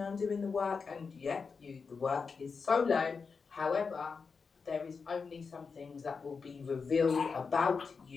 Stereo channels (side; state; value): right; quieter; 5.2 dB